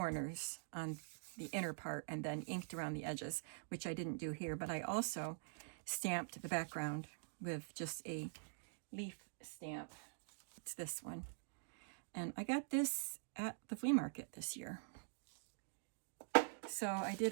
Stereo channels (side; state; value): left; silent; digital silence